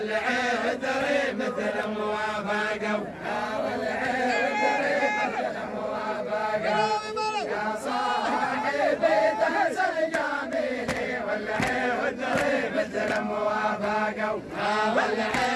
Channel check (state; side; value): identical; both; correlation 1.00